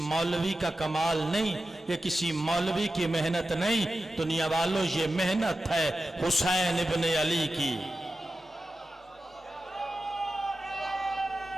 का कमाल नहीं, ये किसी मौलवी की मेहनत नहीं, दुनिया वालों ये मेहनत है हुसैन इब्न अली की।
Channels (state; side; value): normal; both; correlation 0.92